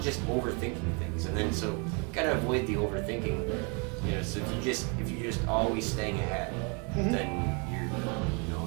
overthinking things. And then so gotta avoid the overthinking. You know, so if you're just always staying ahead, then you're, you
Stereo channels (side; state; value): left; quieter; 34.7 dB